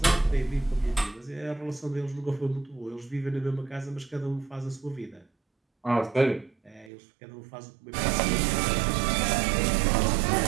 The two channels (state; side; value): drops out; left; at 6.9 s